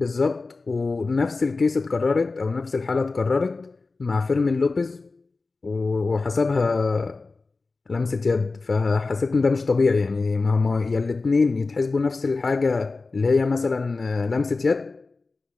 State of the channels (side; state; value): right; quieter; 3.8 dB